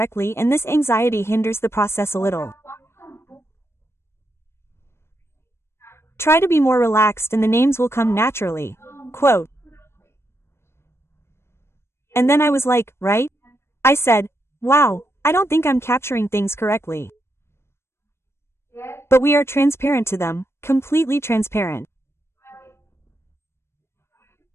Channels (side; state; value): right; late; 0.12 ms